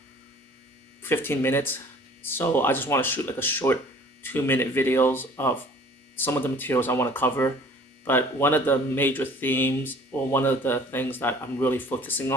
15 minutes, so I just want to shoot like a short 2 minute videos of some of the materials I want to cover. But one of the major themes, or one of the things that I'm really focusing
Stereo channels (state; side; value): normal; both; correlation 0.50